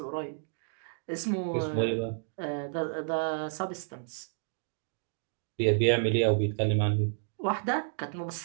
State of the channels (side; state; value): left; silent; digital silence